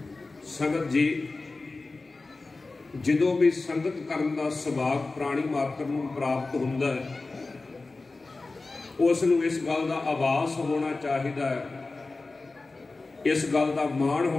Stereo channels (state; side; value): quieter; right; 3.5 dB